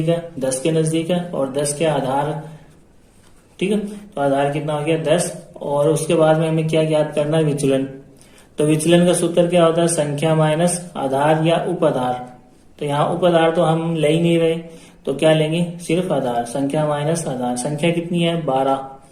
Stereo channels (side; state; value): both; identical; correlation 1.00